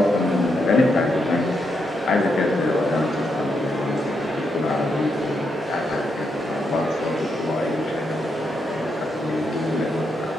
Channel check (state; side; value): normal; both; correlation 0.81